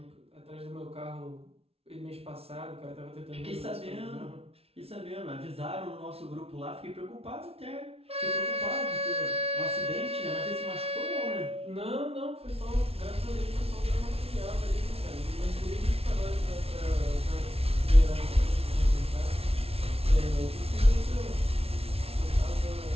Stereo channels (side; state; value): left; late; 0.29 ms